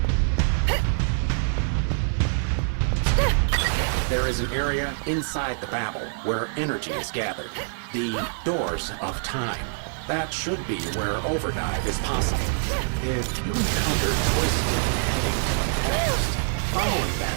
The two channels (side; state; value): left; silent; digital silence